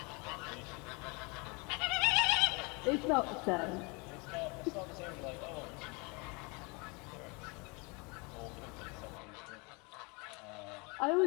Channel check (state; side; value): quieter; right; 29.5 dB